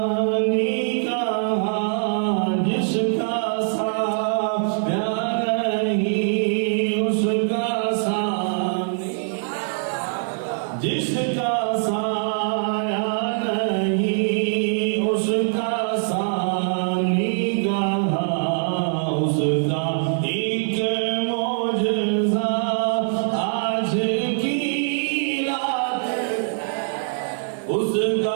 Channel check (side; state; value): left; silent; 64 dB below the other